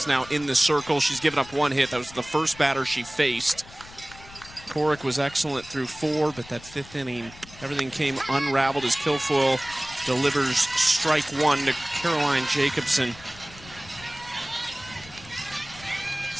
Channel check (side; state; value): left; noise; rumble, 20 dB below the sound